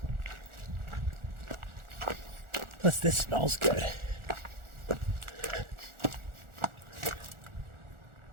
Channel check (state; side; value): late; left; 1.4 ms